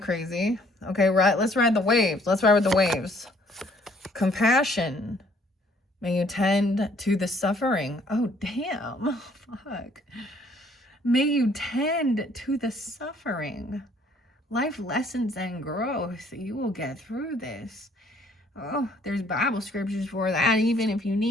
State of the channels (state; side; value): normal; both; correlation 0.62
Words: crazy. Okay, right. Let's ride the waves. Let's ride with the waves. Compassion. May you tend to the suffering. Oh, damn. Fuck. May you tend to the suffering. Life lessons and growth. You will get through this. Oh, there's Bible scriptures for that, even if you